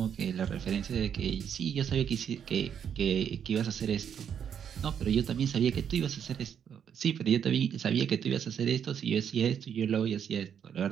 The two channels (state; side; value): quieter; left; 8.2 dB